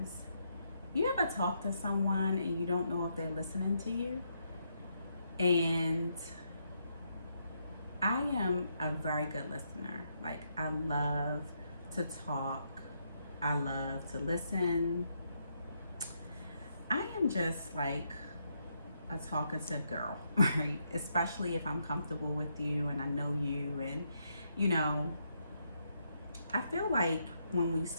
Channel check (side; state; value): both; inverted; correlation -0.78